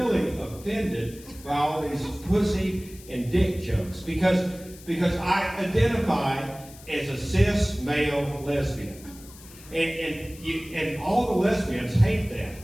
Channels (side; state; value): left; noise; hiss, 20 dB below the sound